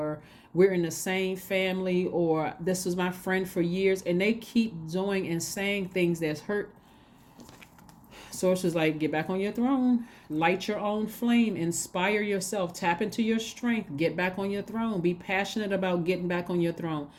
we're in the same family, or this was my friend for years, and they keep doing and saying things that's hurt. Source is like, get back on your throne, light your own flame, inspire yourself, tap into your strength, get back on your throne, be passionate about getting back on your throne.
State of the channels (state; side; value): identical; both; correlation 1.00